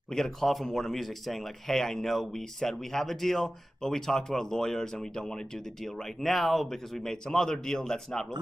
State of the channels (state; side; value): normal; both; correlation 0.96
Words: We get a call from Warner Music saying like, hey, I know we said we have a deal, but we talked to our lawyers and we don't want to do the deal right now because we made some other deal that's not